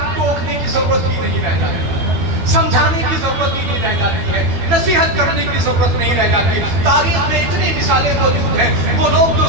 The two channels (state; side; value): late; left; 12 ms